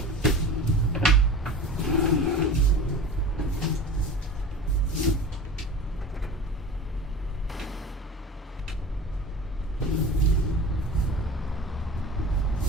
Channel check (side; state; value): both; normal; correlation 0.35